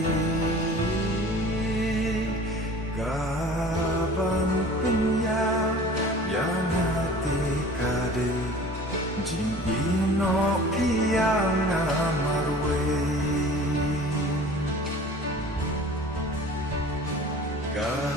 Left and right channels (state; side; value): normal; both; correlation 0.44